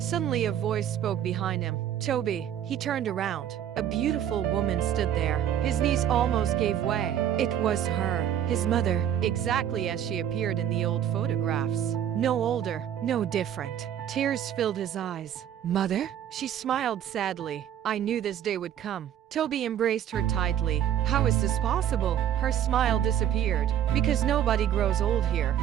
a voice spoke behind him. "Toby." He turned around. A beautiful woman stood there. His knees almost gave way. It was her, his mother, exactly as she appeared in the old photographs. No older, no different. Tears filled his eyes. "Mother?" She smiled sadly. "I knew this day would come." Toby embraced her tightly. "How is this possible?" Her smile disappeared. "Because nobody grows old here."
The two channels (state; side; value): quieter; left; 10.2 dB